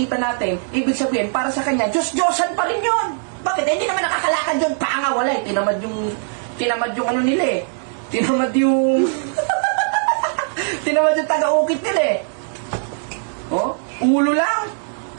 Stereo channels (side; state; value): left; silent; digital silence